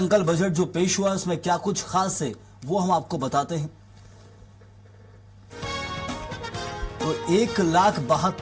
बजट जो पेश हुआ उसमें क्या कुछ खास है वो हम आपको बताते हैं। तो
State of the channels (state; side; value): identical; both; correlation 1.00